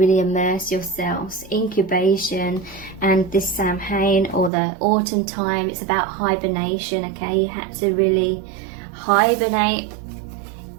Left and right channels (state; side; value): drops out; left; at 4.5 s